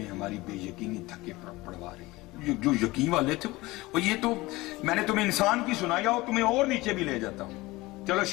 ہماری بے یقینی دھکے پڑوا رہی ہے. جو یقین والے تھے وہ یہ تو میں نے تمہیں انسان کی سنایا اور تمہیں اور نیچے بھی لے جاتا ہوں. چلو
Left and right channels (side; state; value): right; quieter; 20.5 dB